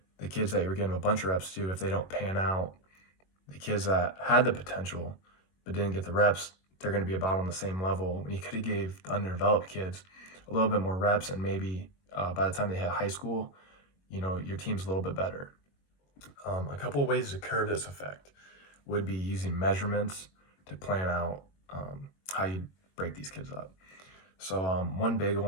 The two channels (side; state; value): right; late; 21 ms